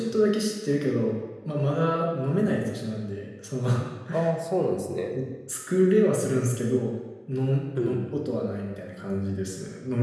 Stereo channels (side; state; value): both; identical; correlation 1.00